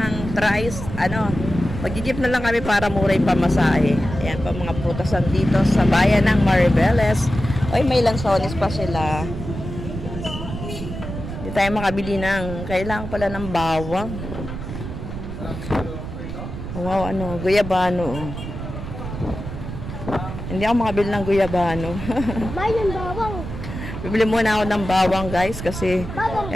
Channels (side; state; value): right; noise; rumble, 8 dB below the sound